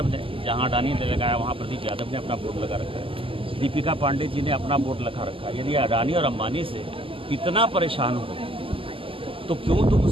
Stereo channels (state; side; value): late; left; 0.26 ms